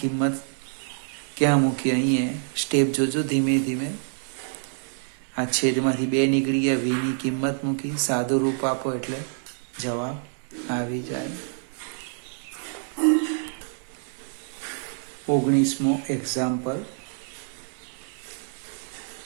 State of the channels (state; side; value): silent; left; 60 dB below the other